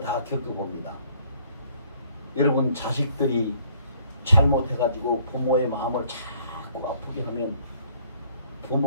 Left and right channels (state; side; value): inverted; both; correlation -0.61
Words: 겪어봅니다. 여러분 자식들이 잘못해가지고 부모의 마음을 자꾸 아프게 하면